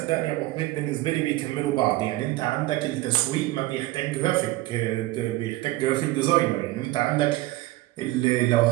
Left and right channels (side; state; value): left; quieter; 18.0 dB